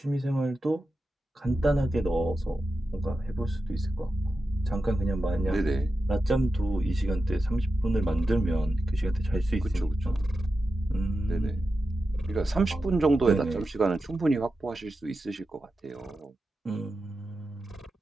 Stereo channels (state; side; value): normal; both; correlation 0.91